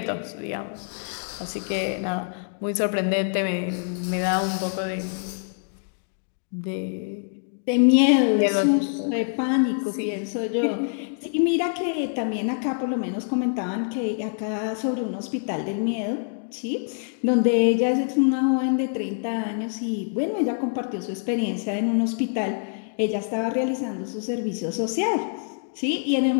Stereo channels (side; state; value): right; silent; digital silence